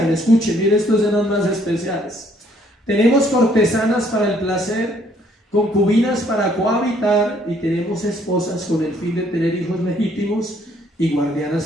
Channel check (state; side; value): normal; both; correlation 0.65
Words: escuchen, miren, estos eran más especiales: tenemos cortesanas para el placer, concubinas para cohabitar, y tenemos esposas con el fin de tener hijos legítimos y